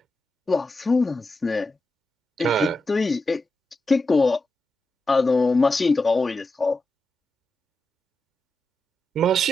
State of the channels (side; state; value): both; normal; correlation 0.89